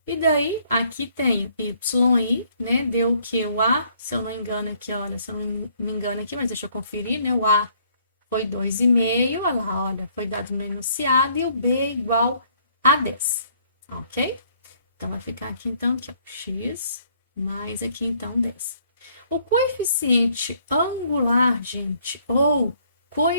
E daí, aqui tem y, né, deu o que? O a, se eu não engano aqui, olha, se eu não me engano aqui, mas deixa eu conferir, né, o a foi 2,5, olha lá, olha, foi dado no enunciado, e o b igual a 10, ok? Então, vai ficar aqui, então, aqui, ó, x, mais aqui, então, 10. O coeficiente angular, gente, ou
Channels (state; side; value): inverted; both; correlation -0.64